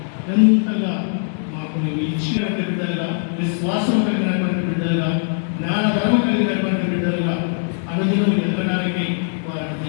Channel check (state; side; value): silent; right; digital silence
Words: ఎంతగా మాకు నీవు ఇచ్చినటువంటి బిడ్డలుగా, విశ్వాసం కలిగినటువంటి బిడ్డలుగా, జ్ఞానధర్మ కలిగినటువంటి బిడ్డలుగా అనుదినం ఎదగడానికి వారిని